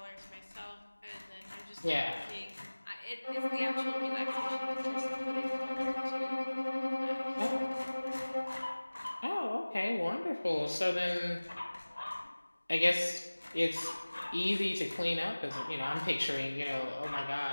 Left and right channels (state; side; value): inverted; both; correlation -1.00